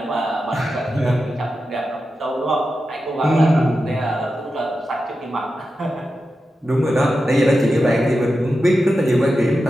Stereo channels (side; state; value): both; normal; correlation 0.91